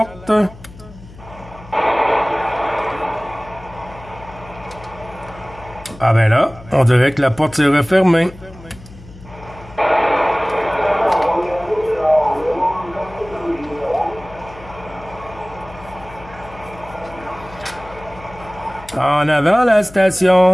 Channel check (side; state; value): left; noise; hum, 19 dB below the sound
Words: Ah ben là, on dirait que la porte s'est refermée. En avant la